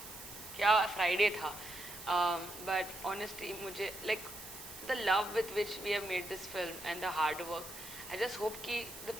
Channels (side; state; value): right; noise; hiss, 12 dB below the sound